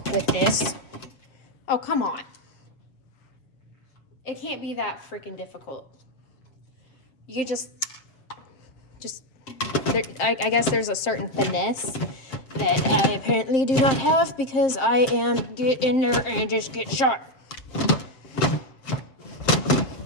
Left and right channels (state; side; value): late; right; 7.6 ms